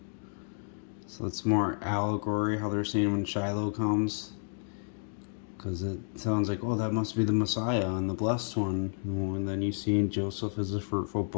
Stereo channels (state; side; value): silent; right; digital silence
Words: So it's more allegory how they're saying when Shiloh comes. Because it sounds like, oh, that must be the Messiah and the blessed one. And then you see Joseph as a fruitful